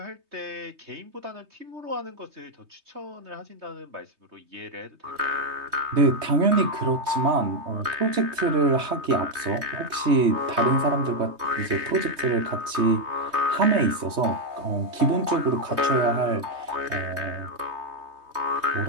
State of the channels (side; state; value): left; late; 3.2 ms